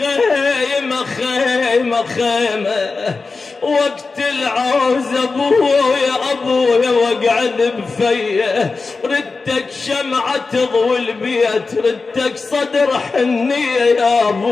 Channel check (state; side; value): quieter; right; 4.1 dB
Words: خيمة خيمة وقت العوز ابويا واقعد بفيه ردتك شمعة تضوي البيت ردتك صدر حنية يا